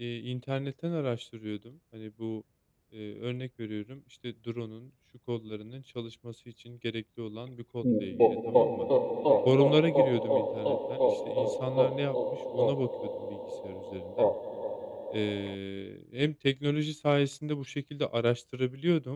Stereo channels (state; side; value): identical; both; correlation 1.00